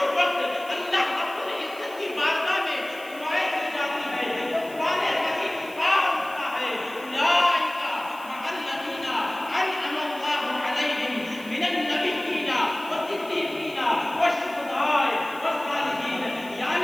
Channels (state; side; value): noise; right; hiss, 20 dB below the sound